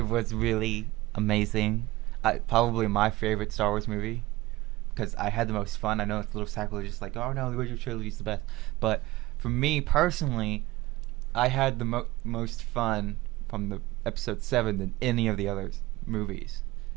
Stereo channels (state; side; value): quieter; left; 18.7 dB